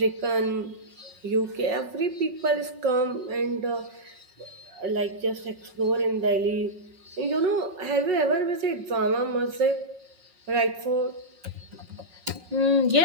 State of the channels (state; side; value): late; left; 5.5 ms